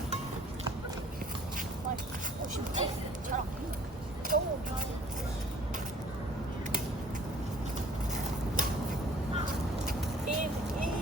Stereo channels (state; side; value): normal; both; correlation 0.54